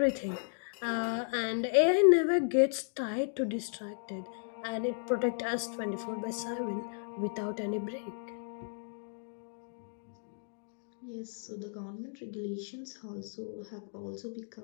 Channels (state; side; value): silent; right; digital silence